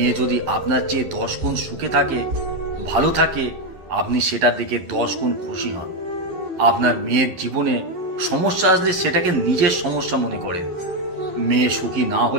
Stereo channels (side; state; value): left; late; 11 ms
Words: যদি আপনার চেয়ে 10 গুণ সুখে থাকে, ভালো থাকে, আপনি সেটা দেখে 10 গুণ খুশি হন। আপনার মেয়ের জীবনে সমস্যা আসলে সেটাকে নিজের সমস্যা মনে করেন। মেয়ে সুখী না